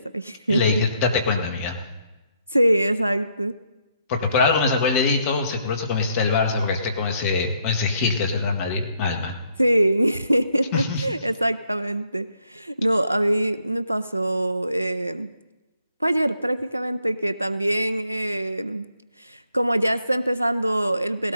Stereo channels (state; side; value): inverted; both; correlation -0.73